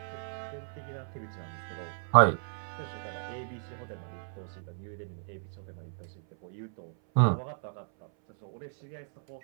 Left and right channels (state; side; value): silent; left; 55 dB below the other